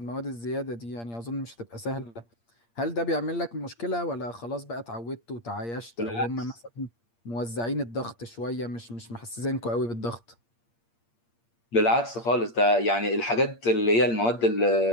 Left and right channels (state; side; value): late; right; 8.6 ms